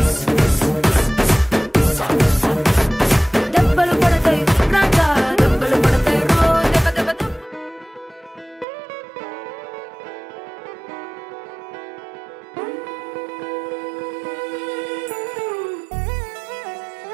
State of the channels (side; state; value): left; drops out; at 8.7 s